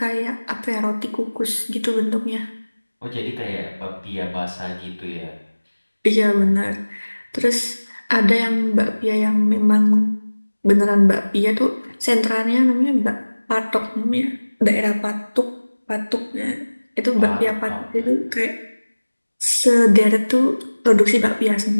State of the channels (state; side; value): inverted; both; correlation -1.00